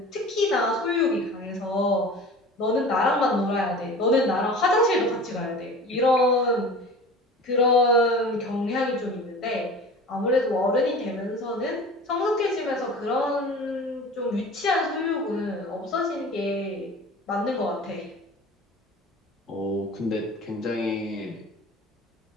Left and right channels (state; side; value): normal; both; correlation 0.39